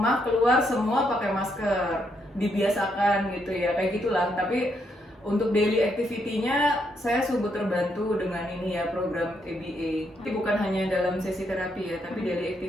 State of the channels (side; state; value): both; normal; correlation 0.77